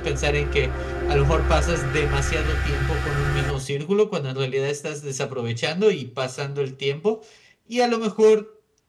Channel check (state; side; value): identical; both; correlation 1.00